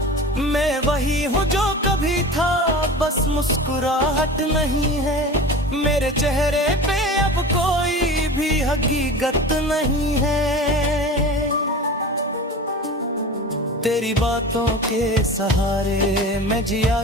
मैं वही हूँ जो कभी था, बस मुस्कुराहट नहीं है। मेरे चेहरे पे अब कोई भी हकीकत नहीं है। तेरी बातों के सहारे मैं जिया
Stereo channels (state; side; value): normal; both; correlation 0.34